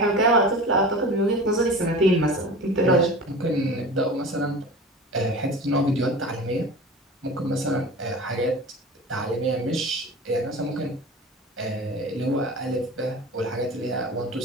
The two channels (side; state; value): both; normal; correlation 0.35